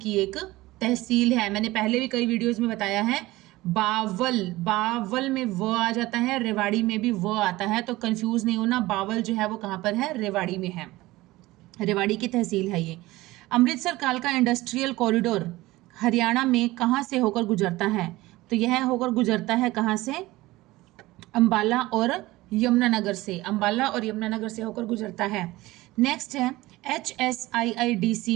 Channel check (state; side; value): quieter; left; 18.9 dB